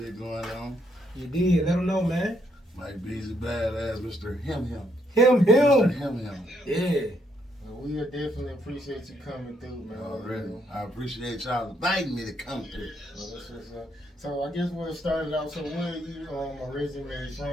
going on. You did. Let him know, man. Like Beezy Badazz, Mr. Him. Him. Mr. Him. Yeah. Well, we definitely appreciate you coming through, man. Already. I appreciate y'all inviting me to come through. Well, that's what's up. So I guess we'll start it out. So where are you originally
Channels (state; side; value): normal; both; correlation 0.74